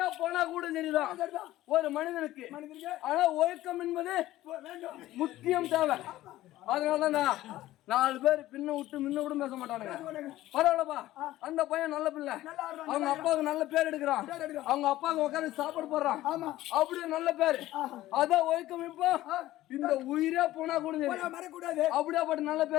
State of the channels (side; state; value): right; quieter; 15.4 dB